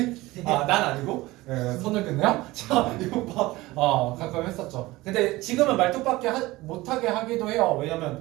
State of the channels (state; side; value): quieter; left; 19.5 dB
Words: 난 아니고? 예, 손을 긋네요? 자, 이거 봐. 가끔 했었죠. 근데 지금은 말뚝박기 못하게 하기도 해요.